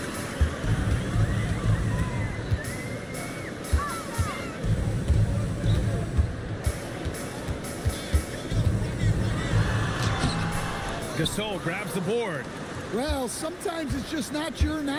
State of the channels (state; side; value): identical; both; correlation 1.00